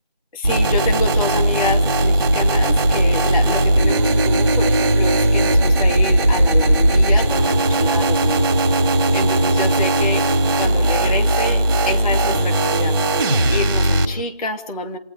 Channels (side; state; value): both; inverted; correlation -0.72